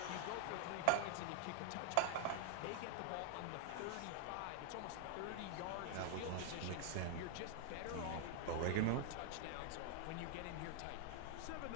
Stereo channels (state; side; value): different; both; correlation 0.00